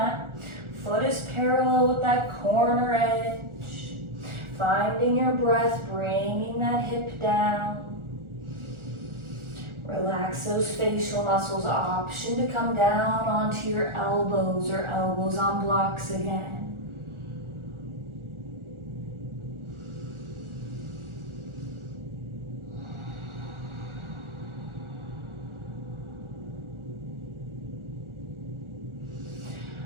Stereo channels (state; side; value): late; left; 1.4 ms